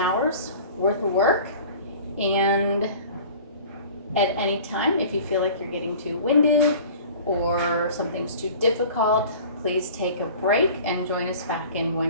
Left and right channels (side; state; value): both; inverted; correlation -0.43